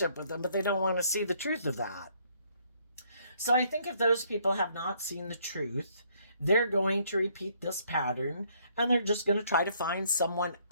with them, but they don't want to see the truth of that. So I think if those people have not seen the truth, they're going to repeat this pattern, and they're just going to try to find someone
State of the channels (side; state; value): both; inverted; correlation -0.67